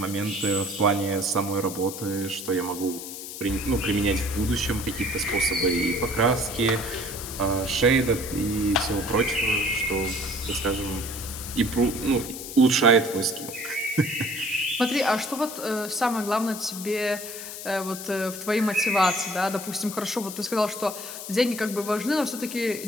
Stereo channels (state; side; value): noise; left; hiss, 9 dB below the sound